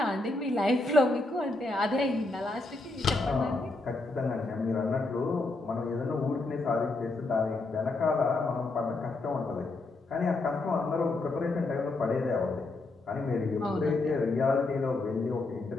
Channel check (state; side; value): quieter; right; 3.2 dB